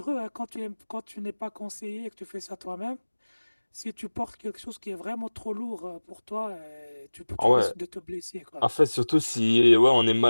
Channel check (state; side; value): inverted; both; correlation -1.00